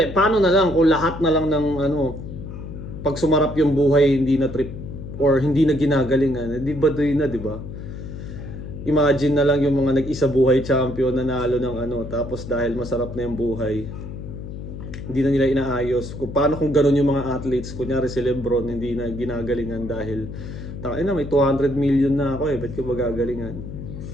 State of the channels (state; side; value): noise; left; hum, 9 dB below the sound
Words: paano na lang kung lahat na lang ng pag sumarap yung buhay hindi na trip or hindi na ginagalingan. Di ba doon na, di ba? Imagine na lang yung mga nag-isa buhay champion na nalo ng tapos dahil masarap na yung buhay, hindi na nila inaayos. Kung paano kung gano'n yung mga athletes, kunyari si Lebron, hindi na ginagalingan dahil tangina may 200 million na ako ba't ko magagalingan?